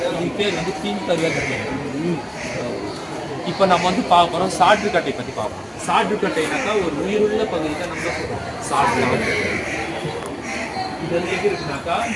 இதுக்கு பேர் வந்து பின்பருவ கட்டை. இப்போ நம்ம வந்து பார்க்க போகிறோம் சாற்றுக்கட்டை பற்றி பார்ப்போம். சாற்றுக்கட்டைனாக்கா ஒரு உயிருள்ள பகுதி தான் நம்ம சொல்கிறோம் சாற்று. இது வந்து எப்படி இருக்குனாக்கா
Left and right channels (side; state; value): both; identical; correlation 1.00